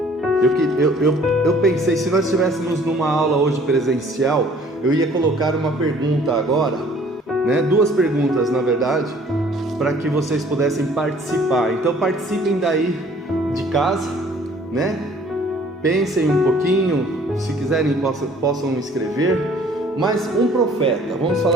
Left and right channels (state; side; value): normal; both; correlation 0.55